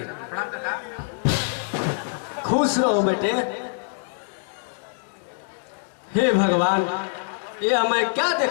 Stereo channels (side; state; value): right; silent; digital silence